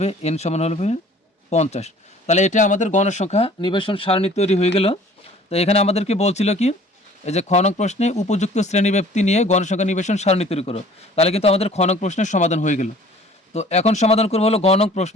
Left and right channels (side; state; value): both; normal; correlation 0.51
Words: এন সমান হবে 50। তাহলে এটা আমাদের গণসংখ্যা নিবেশন সারণী তৈরি হয়ে গেল। তো এখানে আমাদেরকে বলছিল কি, এই যে খ নং প্রশ্নে উপযুক্ত শ্রেণীব্যাপ্তি নিয়ে গণসংখ্যা নিবেশন সারণী তৈরি করো। তাহলে কিন্তু আমাদের খ নং প্রশ্নের সমাধান হয়ে গেল। তো এখন সমাধান করবো হলো গ নং